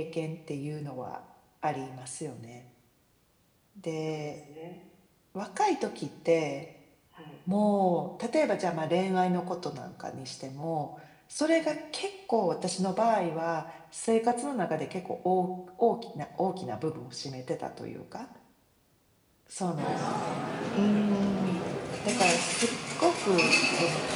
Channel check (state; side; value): identical; both; correlation 1.00